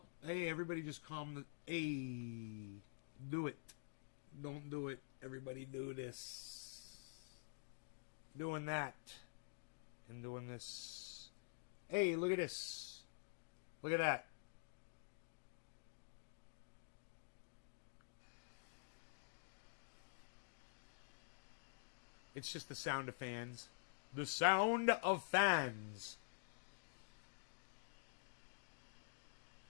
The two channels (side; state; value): right; silent; digital silence